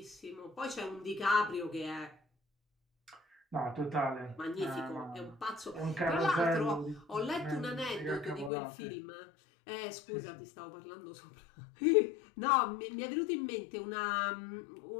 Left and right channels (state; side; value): drops out; right; at 8.5 s